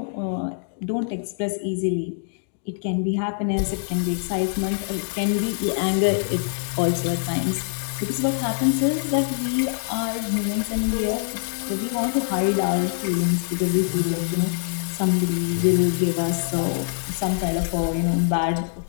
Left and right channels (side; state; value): right; silent; digital silence